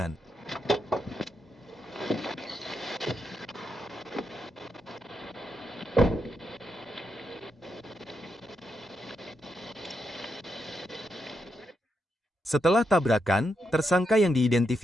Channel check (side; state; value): both; normal; correlation 0.83